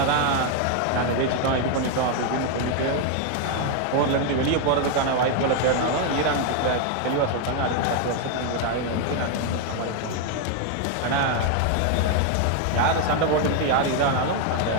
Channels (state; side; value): different; both; correlation 0.01